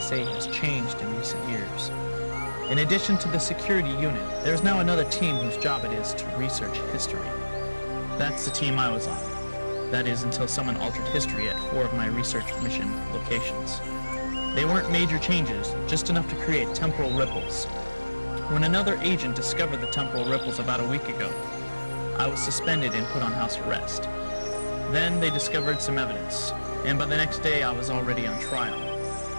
has changed in recent years. In addition to the security unit, there's now another team whose job it is to research history. That's the team I was on. That is, until someone altered history at 4 of my research mission locations. They weren't major changes, just enough to create temporal ripples. When another agent discovered the temporal ripples about a week ago, I was suspended and put on house arrest. Then they discovered some evidence, and by the next day I was already on trial.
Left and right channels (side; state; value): both; inverted; correlation -1.00